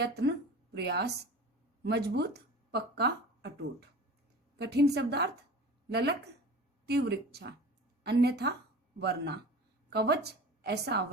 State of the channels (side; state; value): both; normal; correlation 0.37